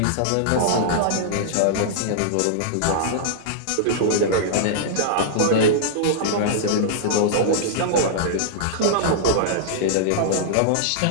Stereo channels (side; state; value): both; different; correlation -0.02